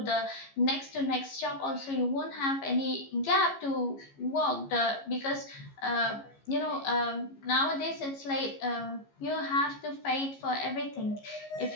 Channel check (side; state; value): right; late; 15 ms